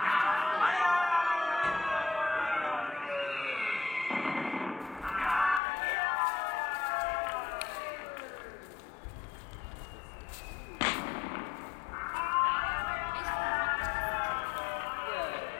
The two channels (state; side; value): drops out; right; at 5.6 s